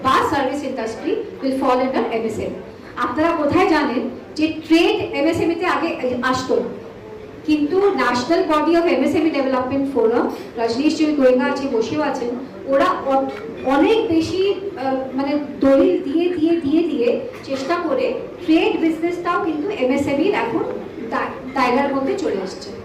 বা service industry will fall under MSME. আপনারা কোথায় জানেন যে ট্রেড এমএসএমইতে আগে আসতো না, কিন্তু national body of MSME development forum, Rajneesh ji Goenka আছে, বসেও আছেন, ওরা অনেক বেশি মানে দলিল দিয়ে দিয়ে দিয়ে দিয়ে চেষ্টা করে ট্রেড বিজনেসটাও কিন্তু এমএসএমইর এখন দায়রার মধ্যে চলে আসছে।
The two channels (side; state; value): both; identical; correlation 1.00